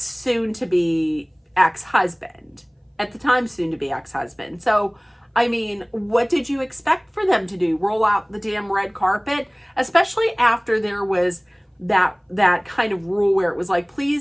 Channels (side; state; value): both; identical; correlation 1.00